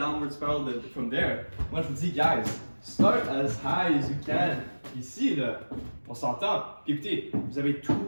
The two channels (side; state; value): both; inverted; correlation -1.00